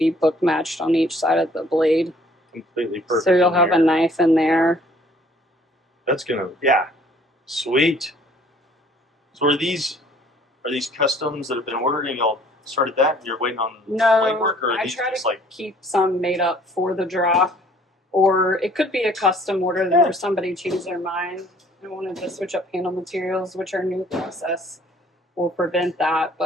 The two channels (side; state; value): both; normal; correlation 0.57